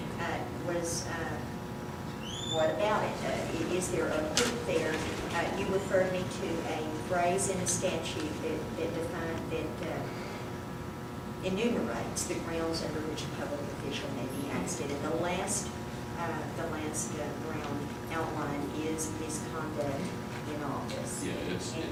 was what about it? Is there a hook there? You referred me to a phrase in a statute that enumerates the grounds under which a public official may be ousted. And the last ground outlined is misconduct in office. Yeah,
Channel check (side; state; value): both; identical; correlation 1.00